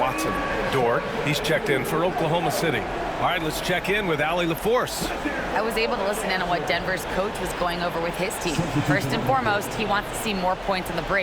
Dort, he's checked in for Oklahoma City. All right, let's check in with Allie LaForce. I was able to listen in on what Denver's coach was going over with his team. First and foremost, he wants to see more points in the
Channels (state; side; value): identical; both; correlation 1.00